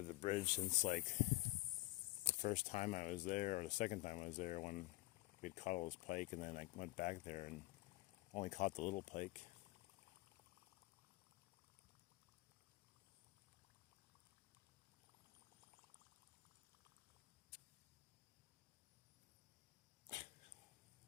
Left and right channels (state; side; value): quieter; right; 19.8 dB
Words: the bridge since like the first time I was there, or the second time I was there, when we'd caught all this pike, and then I went back there and only caught the little pike.